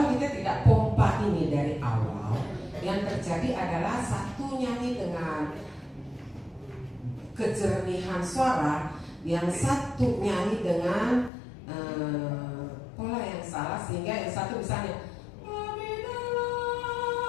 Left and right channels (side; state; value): right; drops out; at 11.3 s